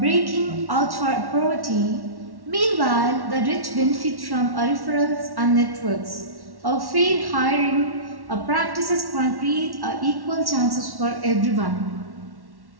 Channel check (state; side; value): late; left; 1.1 ms